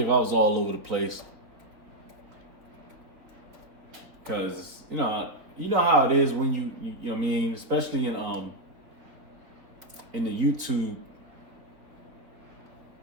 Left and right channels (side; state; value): left; late; 3.8 ms